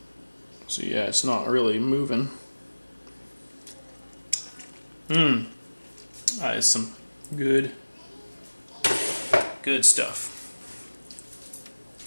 So yeah, it's not really moving. That is some good stuff.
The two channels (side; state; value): both; inverted; correlation -1.00